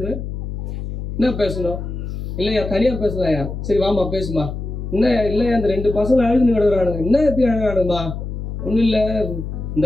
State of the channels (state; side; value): noise; left; hum, 6 dB below the sound